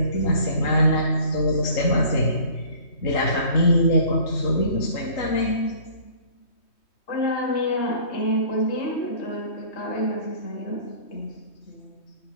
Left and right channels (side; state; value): right; late; 3.2 ms